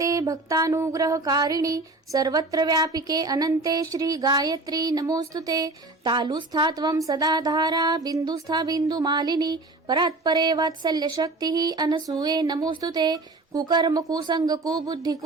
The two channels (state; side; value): quieter; left; 3.1 dB